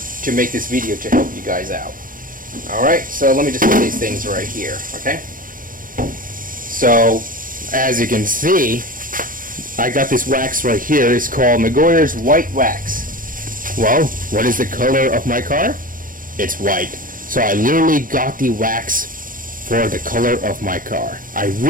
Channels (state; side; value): late; left; 0.40 ms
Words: make this video to help you guys out. Alright, so let me just put these things right here, okay? So, as you can see, I got this wax right here. It's called Megoyer's White Wax. Well, what is the color of my car? It's white. So I literally got the wax for the color of my car. I